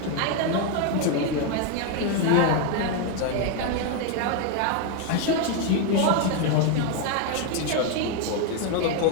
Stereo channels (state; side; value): different; both; correlation 0.01